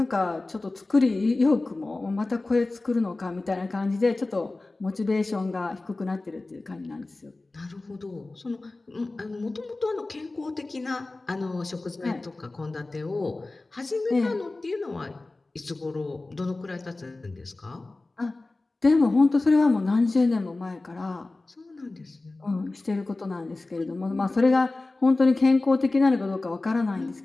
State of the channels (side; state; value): right; quieter; 3.1 dB